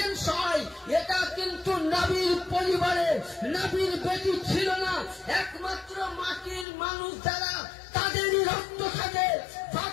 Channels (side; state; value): right; drops out; at 6.7 s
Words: হয়, এটা কিন্তু নবীর পরিবারে নবীর বেটি ছিল না। একমাত্র মাটির মানুষ যারা, তাদেরই রক্ত থাকে।